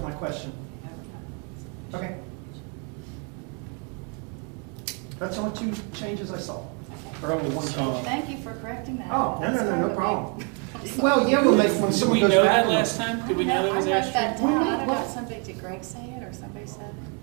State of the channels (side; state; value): left; quieter; 36.6 dB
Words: my question. Okay. That's the only two changes I saw, or only one change. Thank you for correcting that. Oh, no, Sorry. problem. Well, yeah, we'll make, when Did someone we goes know back. that and- last time? Did we know that was I wrote ash that tree? down. I don't know if somebody, did Greg say it or somebody said it?